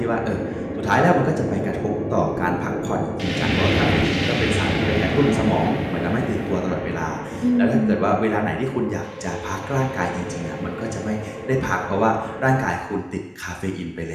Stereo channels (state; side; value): identical; both; correlation 1.00